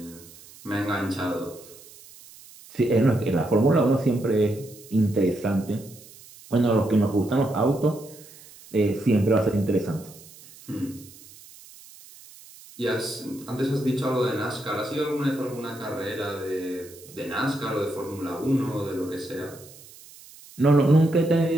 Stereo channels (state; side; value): noise; right; hiss, 21 dB below the sound